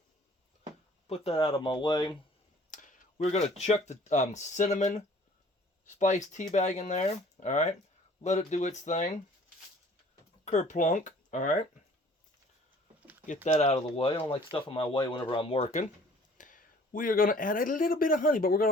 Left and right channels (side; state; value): both; normal; correlation 0.53